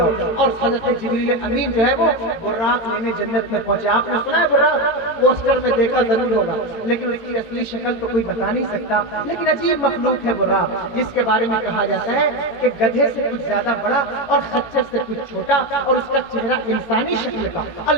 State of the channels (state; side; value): late; right; 18 ms